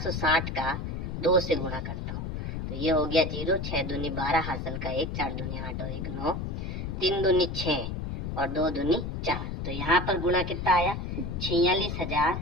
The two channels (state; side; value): noise; left; rumble, 4 dB below the sound